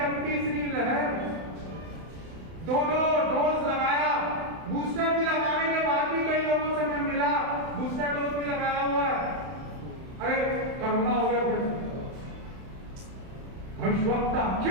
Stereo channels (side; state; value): left; late; 31 ms